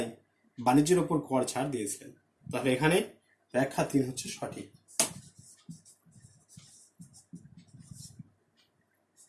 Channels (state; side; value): identical; both; correlation 1.00